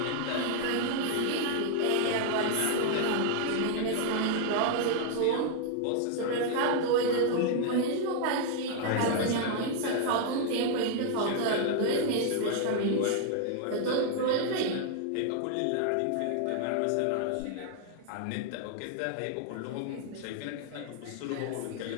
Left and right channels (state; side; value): different; both; correlation 0.00